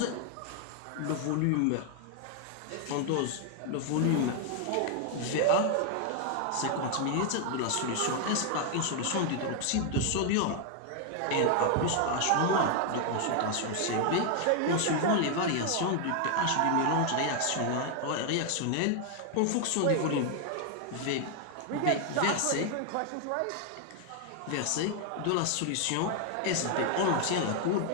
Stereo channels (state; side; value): different; both; correlation 0.00